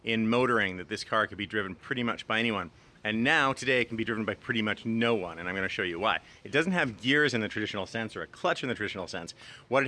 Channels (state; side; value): identical; both; correlation 1.00